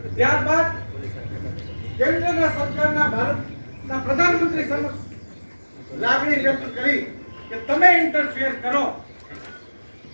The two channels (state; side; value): inverted; both; correlation -1.00